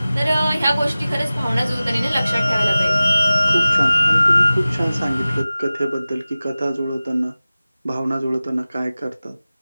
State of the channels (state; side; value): inverted; both; correlation -0.97